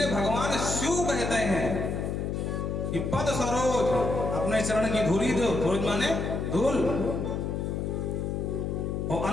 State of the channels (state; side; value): noise; left; hum, 2 dB below the sound